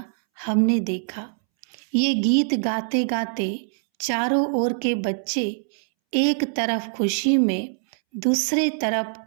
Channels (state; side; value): silent; left; 63 dB below the other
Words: हमने देखा। ये गीत गाते गाते चारों ओर के बच्चे एक तरफ खुशी में, दूसरे तरफ